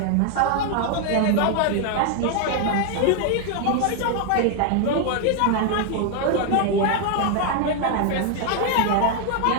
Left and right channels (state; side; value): different; both; correlation 0.00